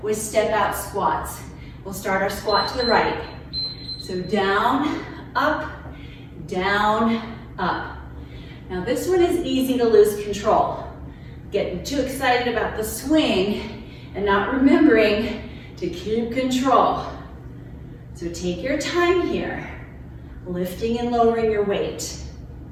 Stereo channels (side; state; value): both; identical; correlation 1.00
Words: with step out squats. We'll start our squat to the right. So down, up, down, up. Now this one is easy to lose control. Getting too excited about the swing and not remembering to keep control. So take your time here, lifting and lowering your weight.